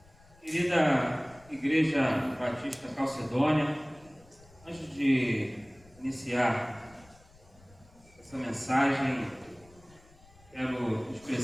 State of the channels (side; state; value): left; noise; rumble, 26 dB below the sound